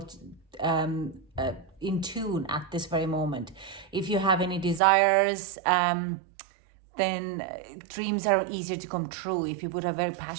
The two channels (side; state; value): left; drops out; at 4.8 s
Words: in tune at this very moment. If you have any desires, then dreams are easier to come true if you put a very